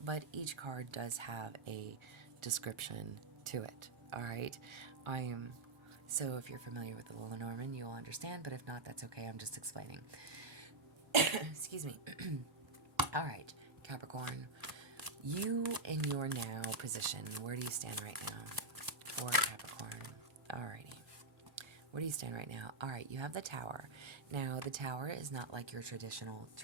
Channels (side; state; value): left; quieter; 3.1 dB